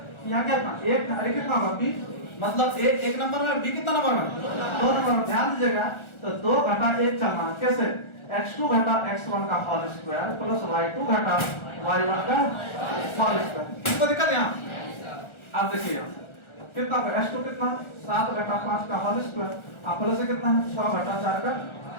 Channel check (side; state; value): right; late; 1.4 ms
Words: यहाँ क्या था? एक अरे कितना होगा बी, मतलब ए एक नंबर में, बी कितना नंबर में? 2 नंबर में। ध्यान दीजिएगा, तो 2 घटा 1 चलना। कैसे? x2 घटा x1 का होल स्क्वायर प्लस y2 घटा y1 का होल स्क्वायर। किसको दिक्कत यहाँ? आप देखिए कितना होगा x2 कितना 7 घटा 5 का होल स्क्वायर, आप प्लस कितना है 6 घटा 4 का